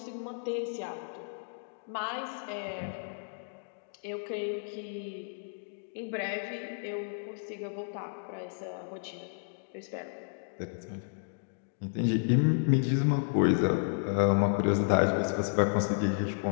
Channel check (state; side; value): silent; right; digital silence